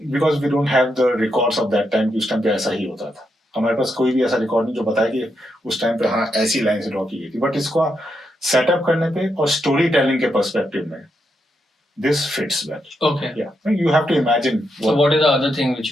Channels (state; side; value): normal; both; correlation 0.82